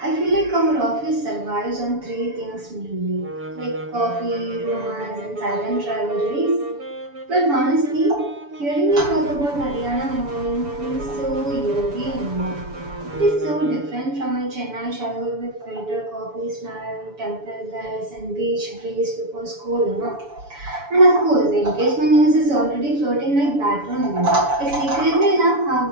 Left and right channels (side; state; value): left; late; 7.0 ms